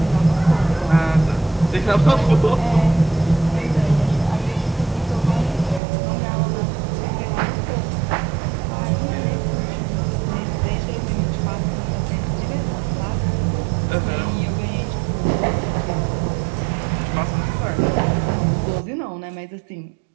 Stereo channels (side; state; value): left; drops out; at 5.8 s